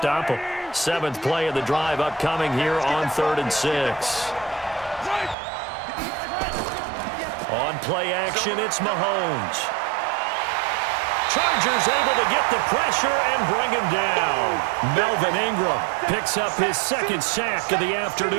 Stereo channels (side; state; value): left; drops out; at 5.4 s